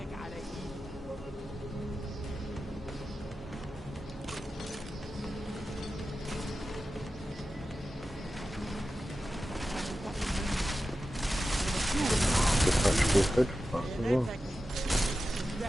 is good. As well.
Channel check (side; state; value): both; normal; correlation 0.93